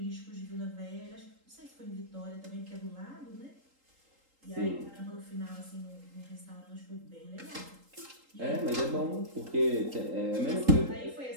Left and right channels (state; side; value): late; left; 3.8 ms